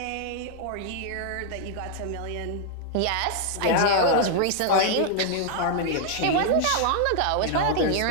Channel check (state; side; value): different; both; correlation 0.00